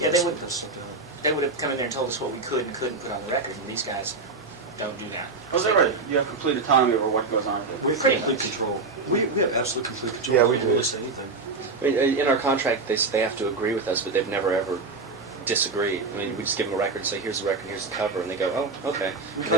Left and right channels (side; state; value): left; quieter; 4.0 dB